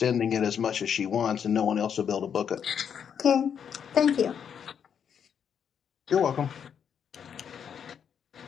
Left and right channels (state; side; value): quieter; right; 7.8 dB